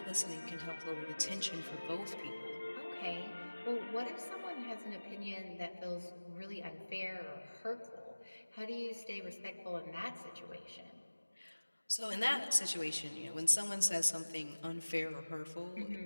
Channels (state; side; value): inverted; both; correlation -1.00